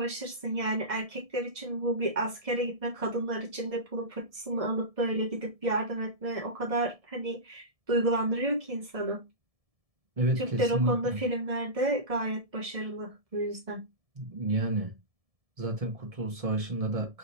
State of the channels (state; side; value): late; left; 1.7 ms